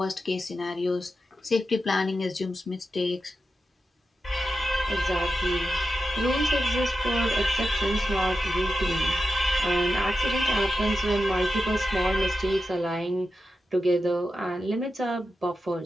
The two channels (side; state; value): both; normal; correlation 0.90